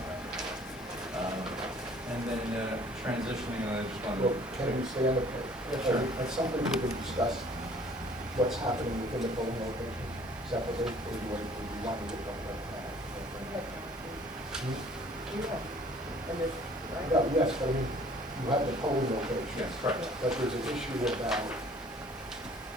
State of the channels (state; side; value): normal; both; correlation 0.54